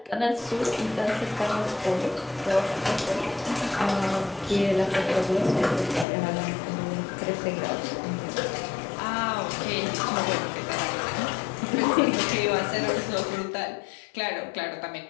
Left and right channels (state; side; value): drops out; right; at 6.1 s